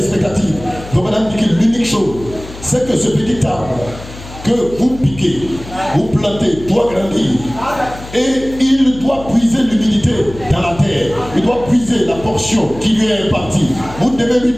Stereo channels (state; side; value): noise; left; hum, 15 dB below the sound